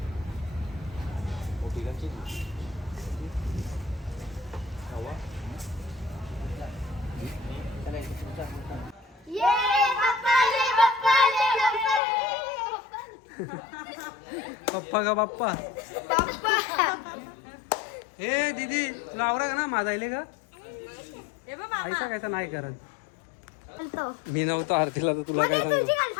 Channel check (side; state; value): right; drops out; at 12.0 s